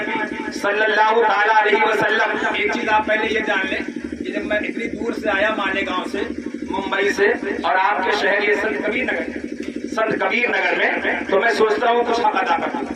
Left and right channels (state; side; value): identical; both; correlation 1.00